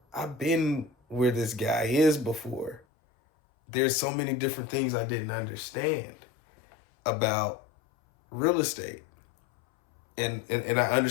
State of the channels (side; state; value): right; drops out; at 2.8 s